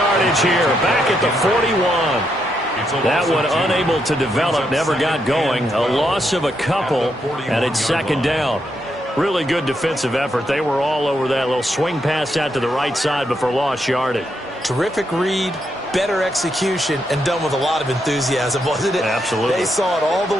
here, back at the 41. That one unable to develop, never got going. A loss of a couple, and it's 2nd down. Really good defensive effort. They were all over that little swing pass out to the right side before lost yardage. Terrific read, better execution, and done with a lot of enthusiasm, wasn't it? Absolutely. They saw it all the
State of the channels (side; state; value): both; normal; correlation 0.80